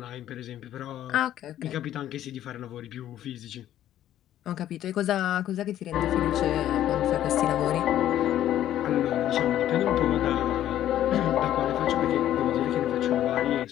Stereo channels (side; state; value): right; quieter; 12.1 dB